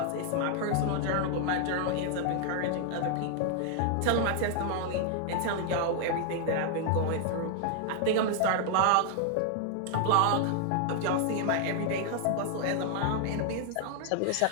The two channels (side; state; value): both; different; correlation 0.00